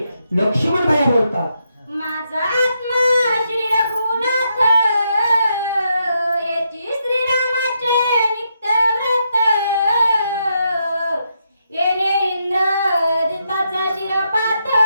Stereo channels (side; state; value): both; inverted; correlation -0.80